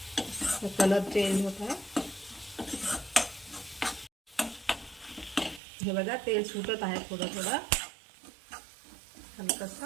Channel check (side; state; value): left; drops out; at 5.6 s